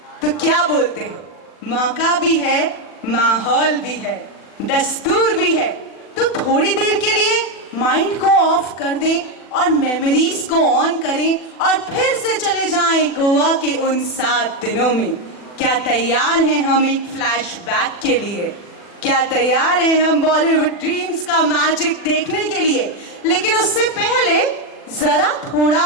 तो क्या बोलते हो? मौका भी है, माहौल भी है, दस्तूर भी है. तो थोड़ी देर के लिए माइंड को ऑफ कर दें और मेमोरीज को ऑन करें और फिर से चले जाएं गोवा के उन 7 दिनों में. क्या तैयार हैं हम एक फ्लैशबैक के लिए? क्या तैयार हैं हम बॉलीवुड ड्रीम्स का मैजिक देखने के लिए? लेकिन उससे पहले जरा थोड़ा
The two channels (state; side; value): late; right; 40 ms